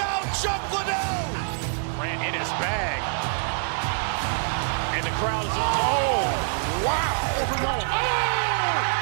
Chuck Liddell. Grant in his bag. And the crowd is, oh, wow.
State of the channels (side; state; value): left; silent; 62 dB below the other